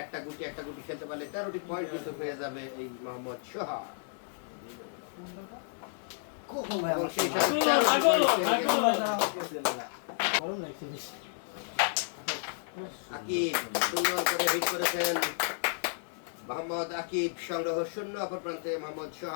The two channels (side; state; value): right; silent; 57 dB below the other